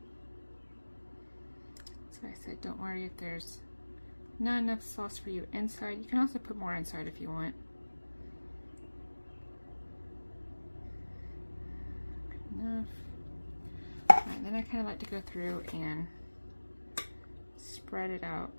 So I said, don't worry if there's not enough sauce for you inside. You can also put more inside if you want. Good enough. Alright, then I kind of like to go through and spread it out.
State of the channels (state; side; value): inverted; both; correlation -1.00